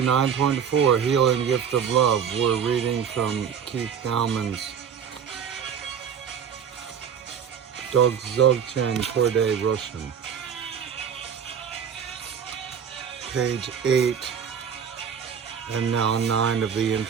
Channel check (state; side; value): quieter; left; 7.6 dB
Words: Healing Gift of Love. We're reading from Dowman'S Dzogchen, Khorde, Rushen. Page 8 and now 9 of the